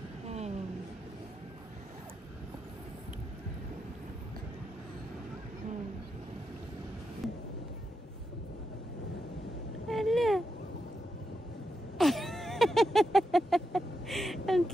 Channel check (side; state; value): both; normal; correlation 0.85